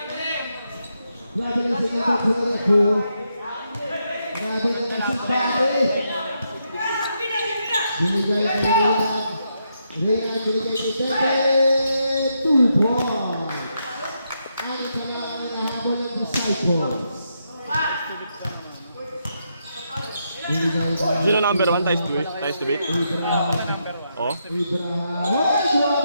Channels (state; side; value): inverted; both; correlation -0.81